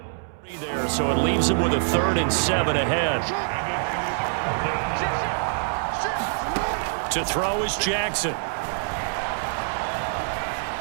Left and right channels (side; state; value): left; silent; digital silence